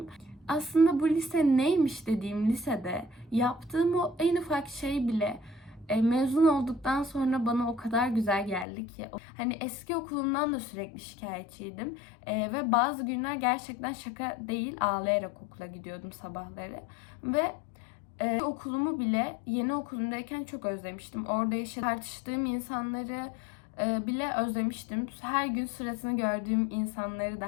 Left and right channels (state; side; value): drops out; right; at 8.7 s